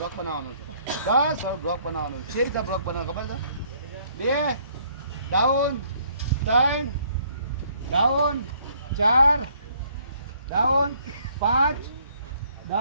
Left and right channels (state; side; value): inverted; both; correlation -0.64